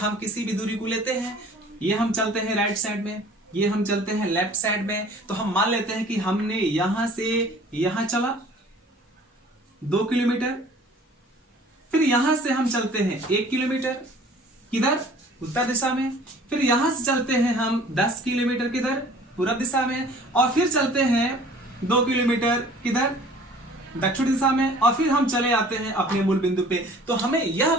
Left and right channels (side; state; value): both; normal; correlation 0.50